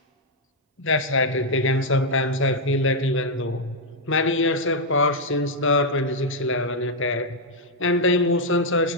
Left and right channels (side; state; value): both; normal; correlation -0.03